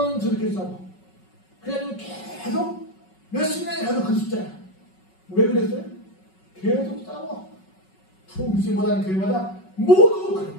저렇게 싸워. 그래가지고 계속 몇십 년이 가도 그 숫자야. 왜 그랬어요? 계속 싸워. 부흥시 못하는 교회마다 모두 그래.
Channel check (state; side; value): late; right; 5.4 ms